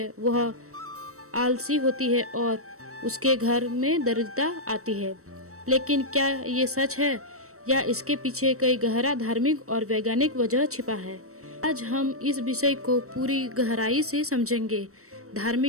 वह आलसी होती है और उसके घर में दरिद्रता आती है। लेकिन क्या ये सच है या इसके पीछे कई गहरा धार्मिक और वैज्ञानिक वजह छिपा है? आज हम इस विषय को पूरी गहराई से समझेंगे,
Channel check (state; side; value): late; left; 0.64 ms